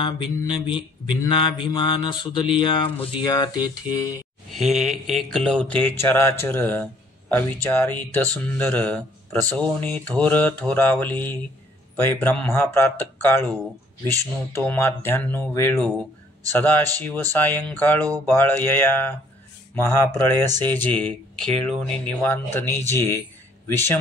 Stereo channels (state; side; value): normal; both; correlation 0.60